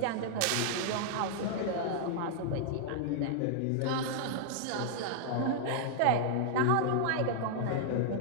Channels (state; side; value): different; both; correlation -0.01